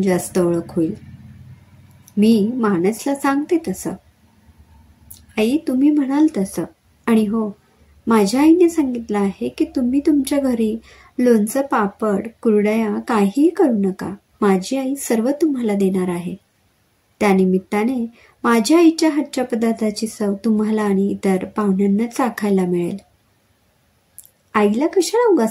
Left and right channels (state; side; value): identical; both; correlation 1.00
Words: जास्त ओळख होईल. मी मानसला सांगते तसं. आई, तुम्ही म्हणाल तसं. आणि हो, माझ्या आईने सांगितलं आहे की तुम्ही तुमच्या घरी लोणचं, पापड, कुरडया काहीही करू नका. माझी आई सर्व तुम्हाला देणार आहे. त्यानिमित्ताने माझ्या आईच्या हातच्या पदार्थाची चव तुम्हाला आणि इतर पाहुण्यांना चाखायला मिळेल. आईला कशाला